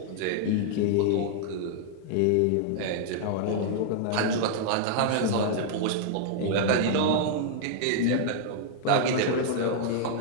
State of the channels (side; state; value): both; different; correlation -0.01